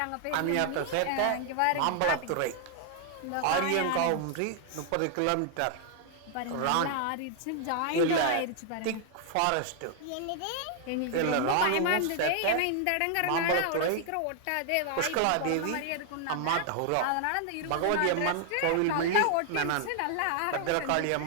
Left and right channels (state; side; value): different; both; correlation 0.00